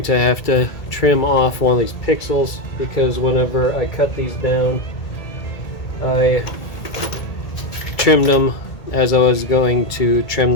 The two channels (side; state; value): right; late; 1.8 ms